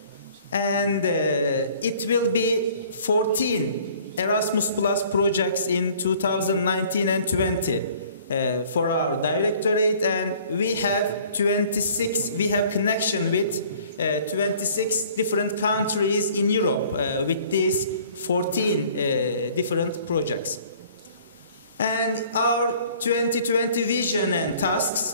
And it will be 14 Erasmus Plus projects in 2019 and 20 for our directorate, and we have 26, we have connection with 26 different countries in Europe with these 14 different projects. And our 2020 vision and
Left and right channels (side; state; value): both; inverted; correlation -0.54